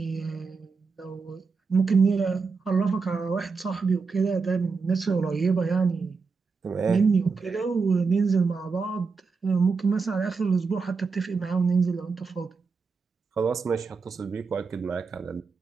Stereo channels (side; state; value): left; quieter; 4.8 dB